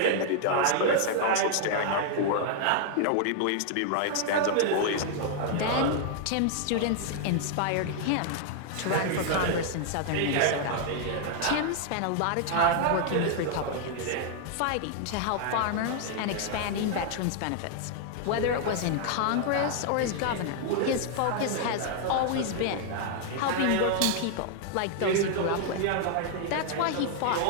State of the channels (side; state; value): both; different; correlation 0.00